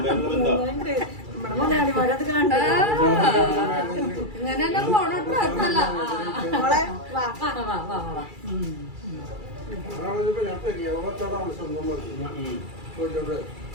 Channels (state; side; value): late; left; 2.3 ms